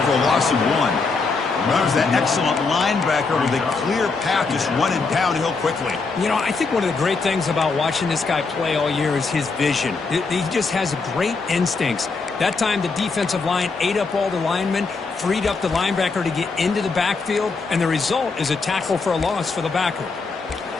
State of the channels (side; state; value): right; quieter; 4.3 dB